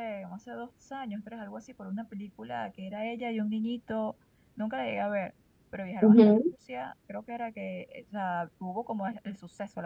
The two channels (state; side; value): identical; both; correlation 1.00